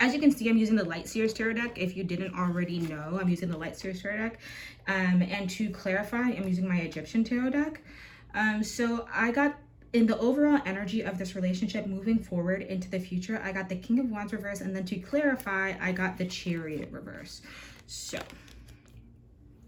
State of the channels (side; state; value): both; identical; correlation 1.00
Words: you can see, I'm using the Light Seers Tarot deck. If you didn't already know, I'm using the Light Seers Tarot deck. And to clarify, I'm using my Egyptian Tarot deck. So I got, in the overall energy of this relationship moving forward into the future, I got the King of Wands reverse. And then to clarify, I got the Chariot reverse. So